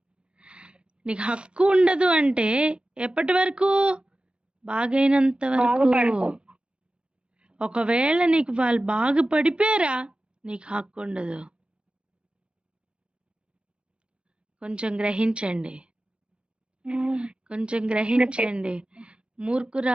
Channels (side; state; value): left; late; 0.056 ms